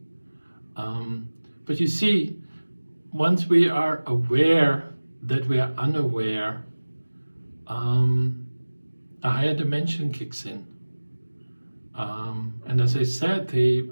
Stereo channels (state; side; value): inverted; both; correlation -1.00